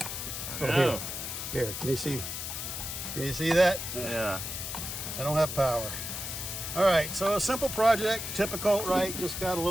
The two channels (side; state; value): left; noise; hiss, 5 dB below the sound